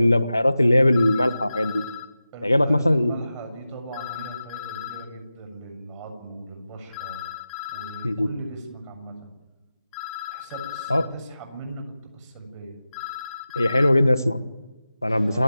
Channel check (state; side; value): inverted; both; correlation -0.93